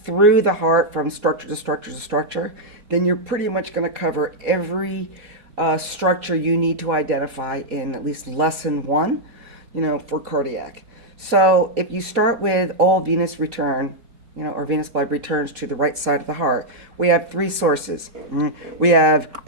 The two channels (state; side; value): late; left; 4.1 ms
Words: the heart from structure to structure to structure, then you're pretty much going to cover every structure you need to identify in at least lesson one, for cardiac. So if you start with all venous return, or venous blood returns to the right side of the heart, we have three sources. We have